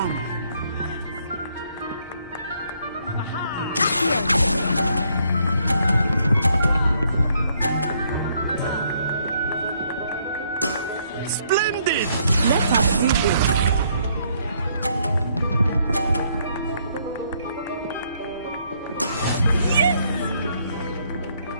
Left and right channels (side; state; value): both; inverted; correlation -0.70